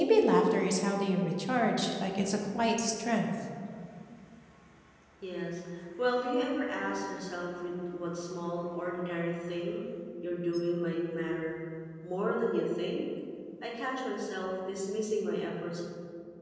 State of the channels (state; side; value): identical; both; correlation 1.00